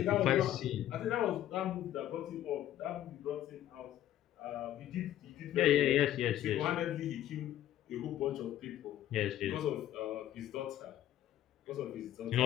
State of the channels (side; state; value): right; quieter; 12.4 dB